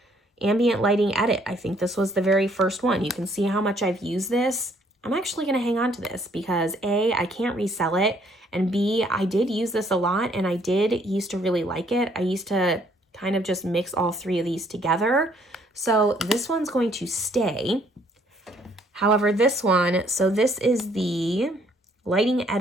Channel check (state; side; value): normal; both; correlation 0.64